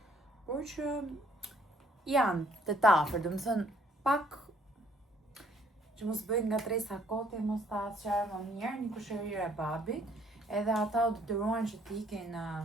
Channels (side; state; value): both; normal; correlation 0.64